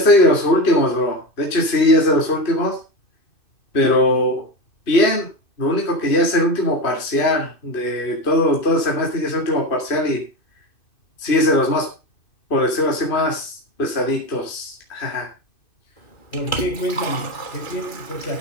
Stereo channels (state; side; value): late; right; 2.6 ms